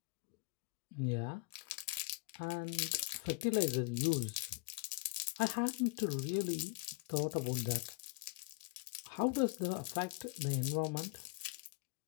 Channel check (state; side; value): quieter; right; 25.9 dB